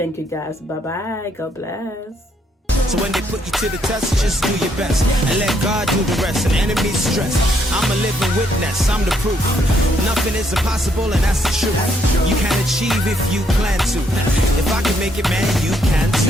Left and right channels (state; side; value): normal; both; correlation 0.72